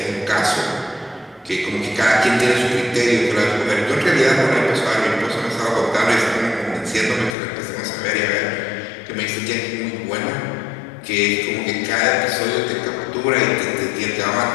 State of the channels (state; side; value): drops out; right; at 7.4 s